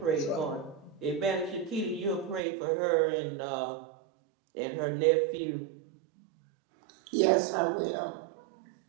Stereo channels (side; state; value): left; drops out; at 2.4 s